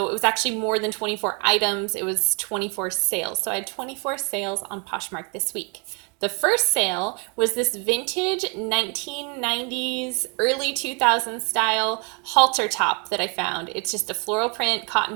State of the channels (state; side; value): quieter; left; 34.3 dB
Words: it was actually more than 24 items. It was 24 sales. So I had 24 sales on Poshmark this week. The first sale was this vintage 1990s, early 2000s style halter top that I found. It's just a floral print